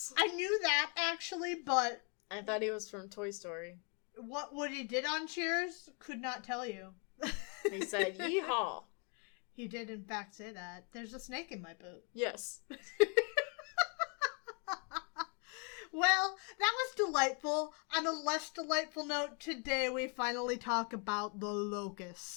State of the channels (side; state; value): right; quieter; 36.9 dB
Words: I knew that, actually, but I thought he was from Toy Story. What Woody did on Cheers? Could not tell you. He said, yeehaw. He did, in fact, say that. There's a snake in my boot. Yes. Well, that was delightful. On a less delightful note, today we finally talk about the